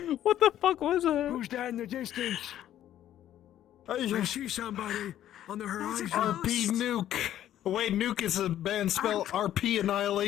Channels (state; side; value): quieter; right; 11.8 dB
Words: What the fuck was it? Who's that in the distance? I see somebody on the horizon. RP Nuke. Wait, Nuke is a band spell. RP